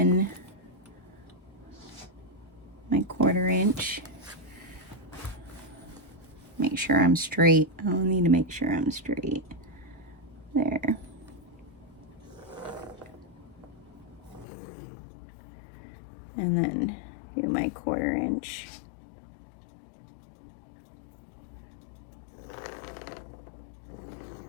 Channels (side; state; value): right; drops out; at 14.5 s